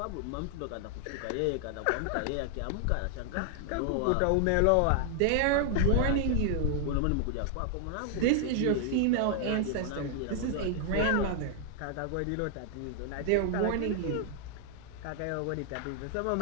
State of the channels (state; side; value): different; both; correlation 0.00